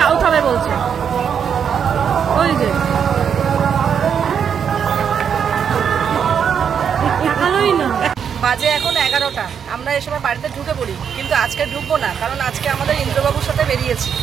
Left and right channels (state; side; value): quieter; left; 7.5 dB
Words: খাবে বলছে। ওই যে ভালোই না। বাজে এখন 11টা, আমরা এই সময় বাড়িতে ঢুকে পড়ি, কিন্তু আজকে ঢুকবো না, কারণ আজকে আমাদের ইন্দ্রবাবুর সাথে বেরিয়েছি।